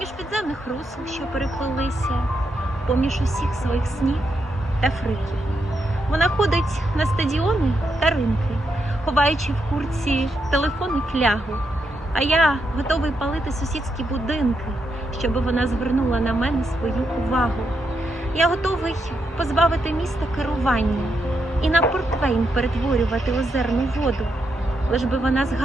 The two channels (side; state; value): both; normal; correlation 0.82